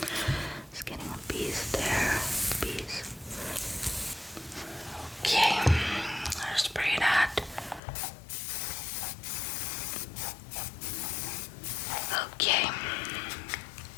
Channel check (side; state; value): right; drops out; at 7.8 s